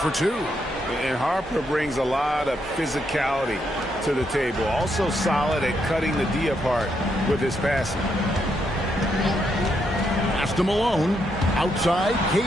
2. And Harper brings a lot of physicality to the table. Also solid at cutting the D apart with his passing. Pass to Malone. Outside,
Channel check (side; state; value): both; normal; correlation 0.78